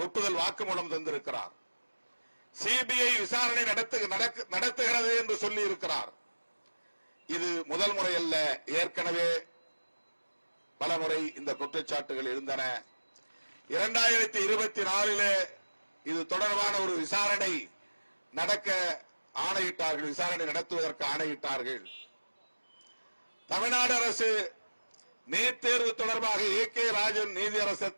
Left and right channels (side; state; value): both; inverted; correlation -1.00